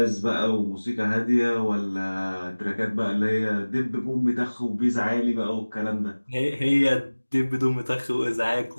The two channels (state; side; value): inverted; both; correlation -1.00